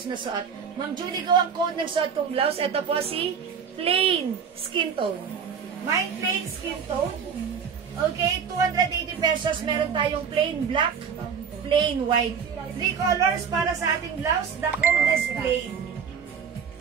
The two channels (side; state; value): left; quieter; 6.8 dB